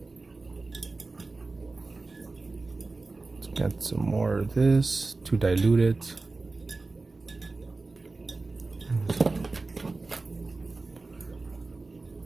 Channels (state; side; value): quieter; left; 3.6 dB